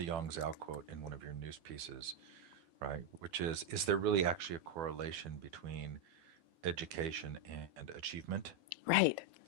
Yang Zhao quote in one of your news pieces, right? Which is there really actually a correlation between education and achievement? Right.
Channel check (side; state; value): left; late; 12 ms